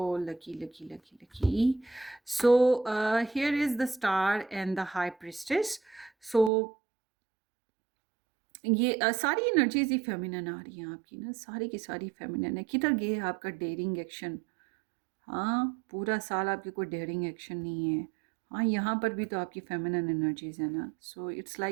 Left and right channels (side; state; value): left; drops out; at 6.5 s